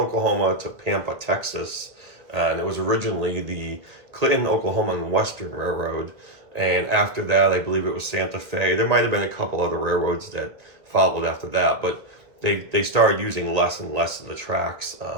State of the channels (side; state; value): left; late; 1.5 ms